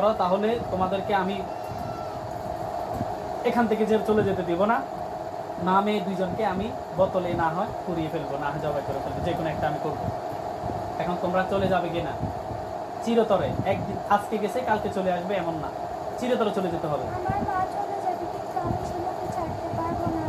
তাহলে তোমাদেরকে আমি এখান থেকে চলে যেতে দিব না। না মেয়ে দুইজনকে আমি বোতলে না হয় পুড়িয়ে ফেলবো, না হয় জবাই করে ফেলবো, যে কোনো একটা আমি করবো। এখন তোমরা চলে যাবে কিনা? চিরতরে একদিন, আজকে গেছে কালকে চলে আসবে এমন না, চিরতরে চলে যেতে হবে। আমার মা চলে যাবে, কিন্তু আমি শিমুকে ছাড়তে পারবো না।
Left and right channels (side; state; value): both; identical; correlation 1.00